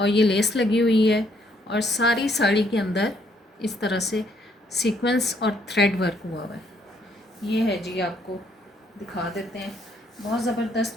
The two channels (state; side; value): normal; both; correlation 0.69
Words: ये लेस लगी हुई है। और सारी साड़ी के अंदर इस तरह से सीक्वेंस और थ्रेड वर्क हुआ हुआ है। ये है जी, आपको दिखा देते हैं। बहुत